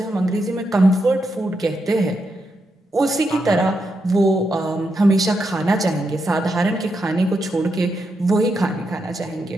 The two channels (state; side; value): normal; both; correlation 0.83